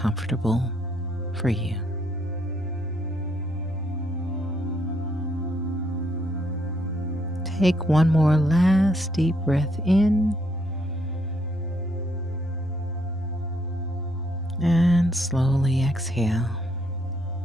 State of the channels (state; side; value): normal; both; correlation 0.72